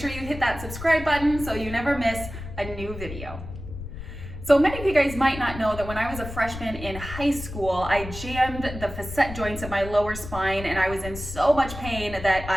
you hit that subscribe button so you never miss a new video. So many of you guys might not know that when I was a freshman in high school, I jammed the facet joints of my lower spine and I was in so much pain that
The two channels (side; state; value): left; noise; rumble, 10 dB below the sound